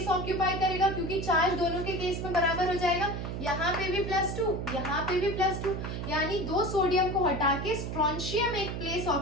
ऑक्यूपाई करेगा, क्योंकि चार्ज दोनों के केस में बराबर हो जाएगा। यहाँ पे भी +2, यहाँ पे भी +2, यानी 2 सोडियम को हटा के स्ट्रोंशियम एक प्लेस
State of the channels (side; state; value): right; noise; hum, 5 dB below the sound